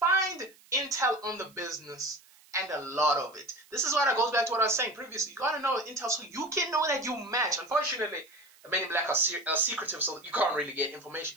intel on the business, and a lot of it. This is what goes back to what I was saying previously. You gotta know intel so you can know that you match. Unfortunately, the Men in Black are secretive, so you can't really get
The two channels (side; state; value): right; noise; hiss, 27 dB below the sound